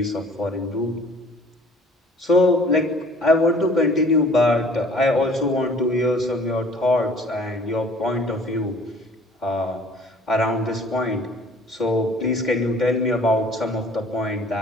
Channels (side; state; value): both; normal; correlation 0.53